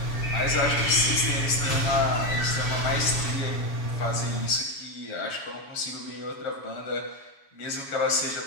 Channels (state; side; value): late; right; 7.1 ms